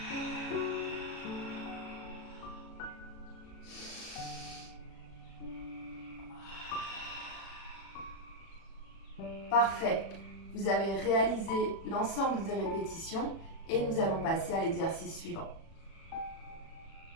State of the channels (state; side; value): late; right; 36 ms